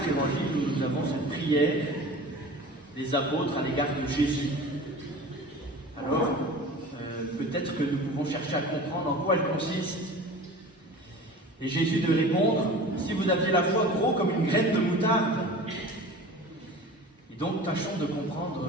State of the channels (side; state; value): both; normal; correlation 0.38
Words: évangiles, où nous avons cette prière des apôtres à l'égard de Jésus. Alors, peut-être que nous pouvons chercher à comprendre en quoi elle consiste. Et Jésus de répondre, si vous aviez la foi gros comme une graine de moutarde. Et donc, tâchons de comprendre